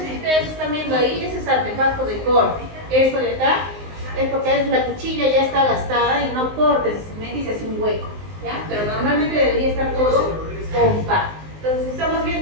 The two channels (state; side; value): late; left; 19 ms